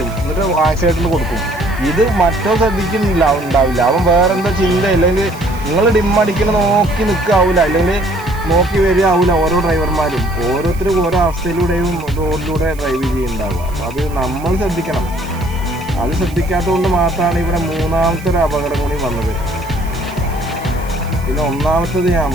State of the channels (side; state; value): right; noise; hiss, 21 dB below the sound